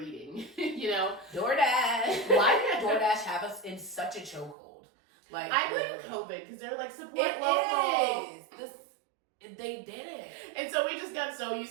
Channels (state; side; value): drops out; left; at 4.5 s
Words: You know, DoorDash. Why did DoorDash have us in such a chokehold? Like, I blame COVID because they're like support it local. They did it. And so we just got so